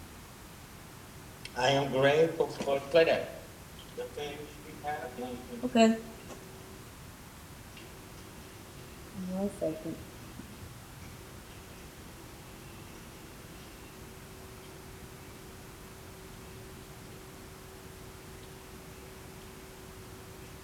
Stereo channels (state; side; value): identical; both; correlation 1.00